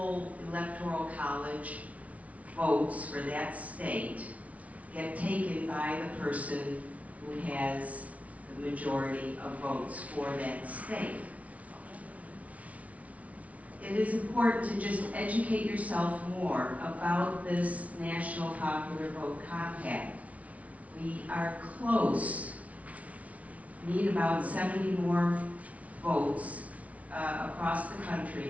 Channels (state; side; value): late; left; 0.067 ms